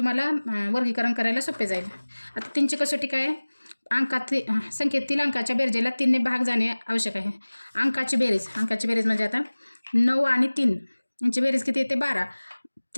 वर्गीकरण करायला सोपे जाईल. आता 3ची कसोटी काय आहे? संख्येतील अंकाच्या बेरजेला 3ने भाग जाणे आवश्यक आहे. अंकाची बेरीज म्हणजे आता 9 आणि 3 यांची बेरीज किती येते? 12.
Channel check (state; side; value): inverted; both; correlation -1.00